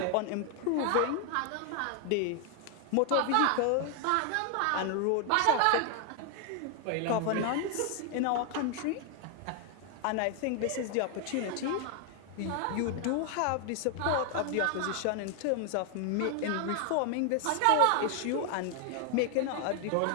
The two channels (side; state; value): both; different; correlation 0.00